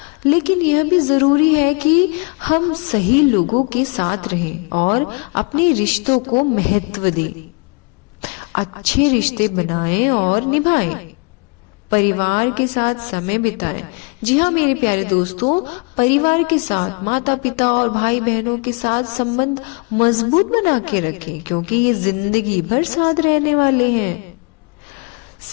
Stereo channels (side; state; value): right; quieter; 32.1 dB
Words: लेकिन यह भी जरूरी है कि हम सही लोगों के साथ रहें और अपने रिश्तों को महत्व दें। अच्छे रिश्ते बनाएं और निभाएं, परिवार के साथ समय बिताएं। जी हाँ मेरे प्यारे दोस्तों, परिवार के साथ, माता पिता और भाई बहनों के साथ संबंध मजबूत बना के रखें क्योंकि ये जिंदगी भर साथ रहने वाले हैं।